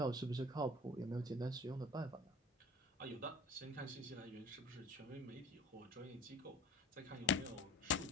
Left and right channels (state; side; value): normal; both; correlation 0.42